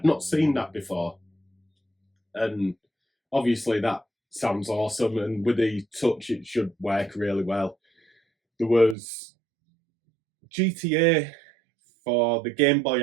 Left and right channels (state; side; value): drops out; left; at 9.0 s